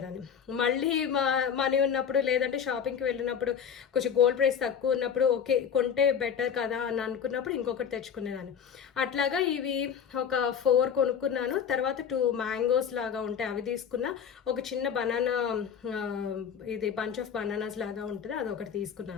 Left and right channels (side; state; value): right; quieter; 7.6 dB